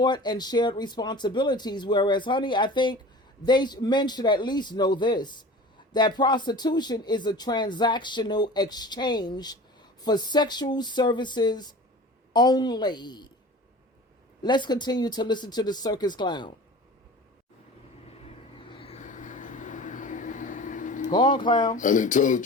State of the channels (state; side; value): normal; both; correlation 0.39